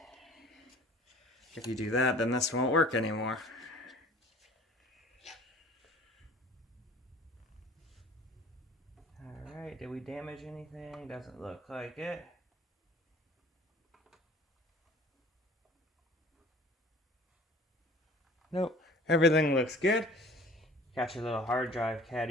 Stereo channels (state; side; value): normal; both; correlation 0.48